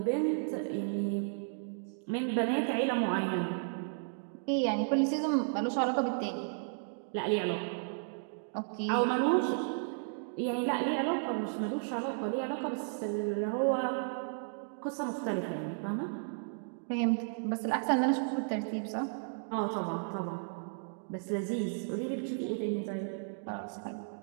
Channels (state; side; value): silent; left; digital silence